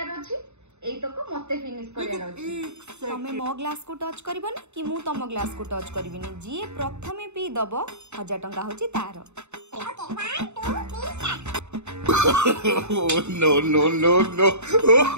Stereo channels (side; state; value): left; late; 0.82 ms